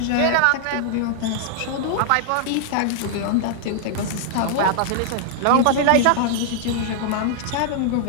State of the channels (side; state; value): both; different; correlation -0.01